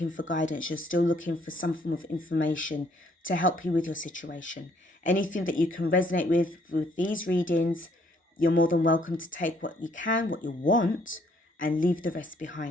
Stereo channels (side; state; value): both; normal; correlation 0.66